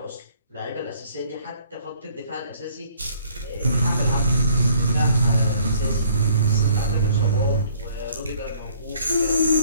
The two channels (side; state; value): both; inverted; correlation -0.59